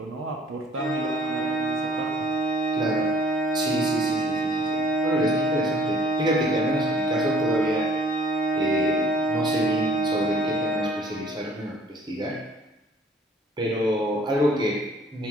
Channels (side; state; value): both; normal; correlation 0.56